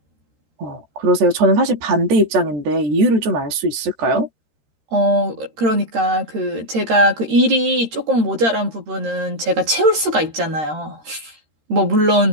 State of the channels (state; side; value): late; left; 13 ms